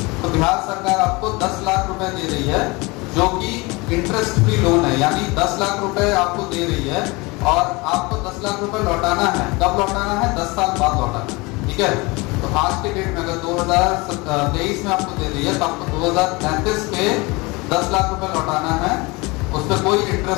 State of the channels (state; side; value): quieter; right; 25.0 dB